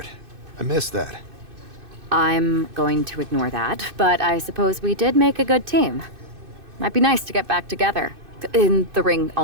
I miss that. I'm going to ignore that, but I suppose we did make a good team. Might be nice to get back together. In the ring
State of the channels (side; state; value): left; late; 2.6 ms